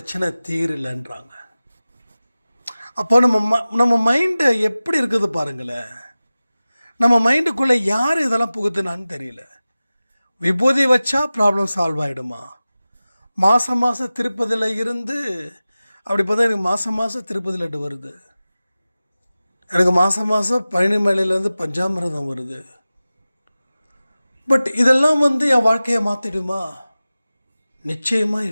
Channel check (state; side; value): inverted; both; correlation -0.97